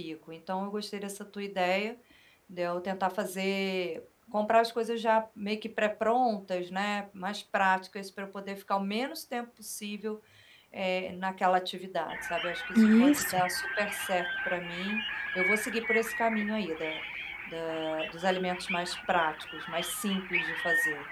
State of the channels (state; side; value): identical; both; correlation 1.00